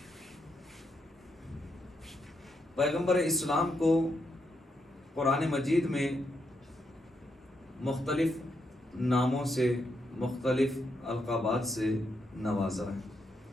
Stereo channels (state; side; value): normal; both; correlation 0.80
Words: پیغمبر اسلام کو قرآن مجید میں مختلف ناموں سے، مختلف القابات سے نوازا ہے.